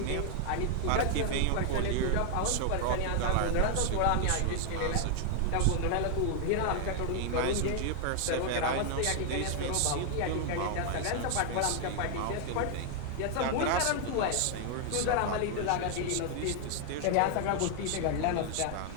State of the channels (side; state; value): both; different; correlation 0.00